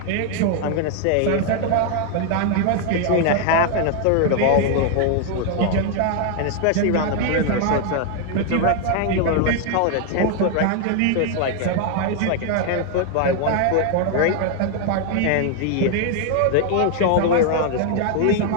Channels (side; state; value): both; different; correlation 0.00